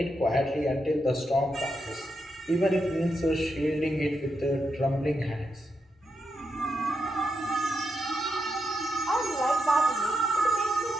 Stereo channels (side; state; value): both; normal; correlation 0.84